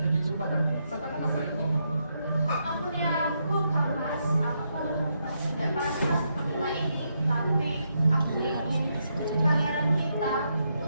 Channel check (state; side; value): inverted; both; correlation -0.80